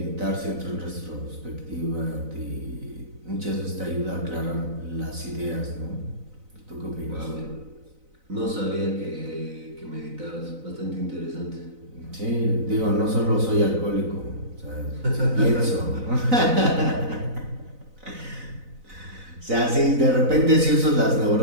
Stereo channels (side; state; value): left; late; 4.0 ms